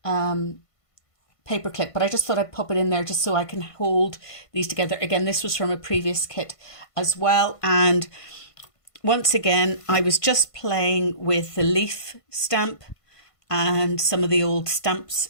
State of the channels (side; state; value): right; late; 1.5 ms